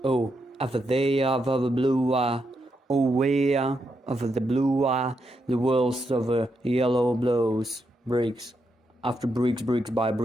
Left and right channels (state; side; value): normal; both; correlation 0.82